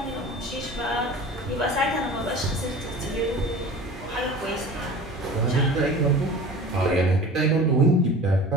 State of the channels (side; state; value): both; normal; correlation 0.39